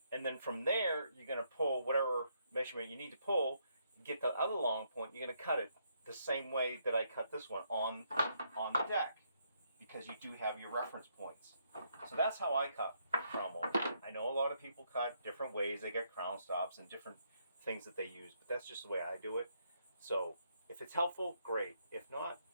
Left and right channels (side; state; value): both; inverted; correlation -0.74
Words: and then from there, you're going to pull whatever measurement you need to pull, get the other long point, you're going to cut it the same way that I cut this one on the deck, because you do have your reference points. So that's how I cut crown molding. I know a lot of people cut different ways. They get crown stops and different things that they use, but that's just the way I do it. So if it's helpful, great. If not,